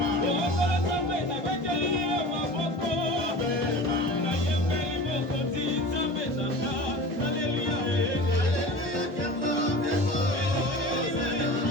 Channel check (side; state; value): left; late; 1.5 ms